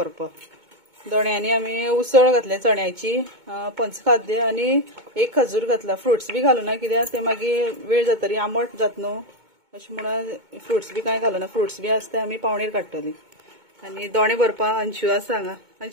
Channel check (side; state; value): left; late; 2.2 ms